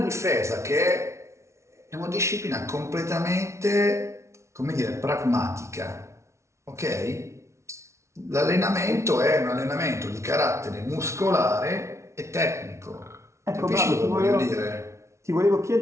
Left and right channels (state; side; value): late; left; 0.13 ms